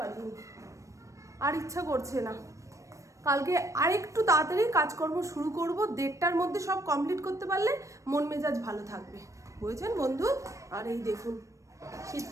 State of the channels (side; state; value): left; late; 0.15 ms